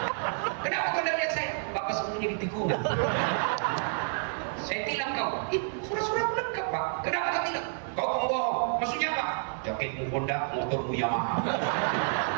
Kenapa kau udah lihat saya? Bapak sembunyi di tikungan. Saya tilang kau. Surat-surat lengkap Pak. Kenapa kau tilang? Kau pembohong. Maksudnya apa? Jaketmu Honda, motormu Yamaha.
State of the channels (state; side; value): silent; left; digital silence